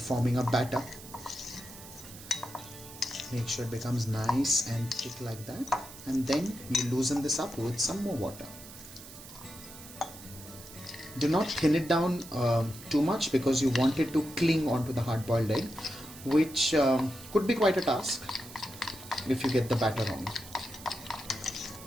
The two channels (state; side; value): noise; right; hiss, 16 dB below the sound